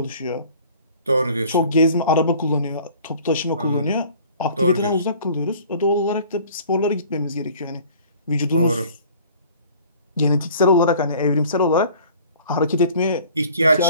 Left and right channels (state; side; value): inverted; both; correlation -0.50